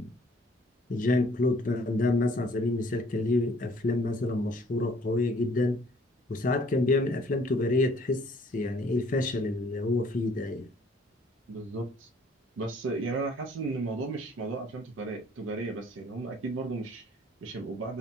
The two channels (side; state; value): both; normal; correlation 0.59